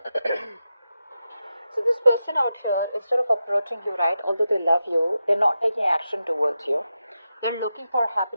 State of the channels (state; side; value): inverted; both; correlation -0.89